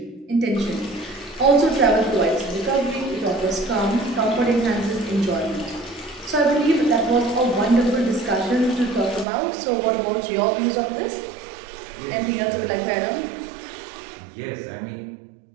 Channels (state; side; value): drops out; left; at 9.2 s